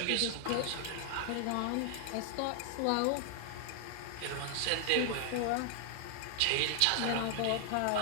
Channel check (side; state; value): both; different; correlation 0.00